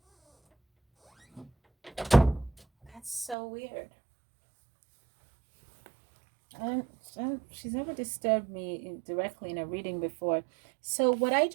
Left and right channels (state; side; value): drops out; left; at 3.4 s